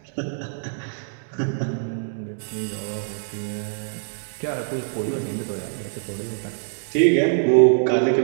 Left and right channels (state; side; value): silent; left; digital silence